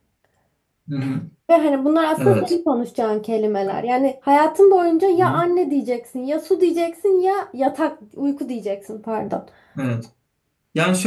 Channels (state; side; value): identical; both; correlation 1.00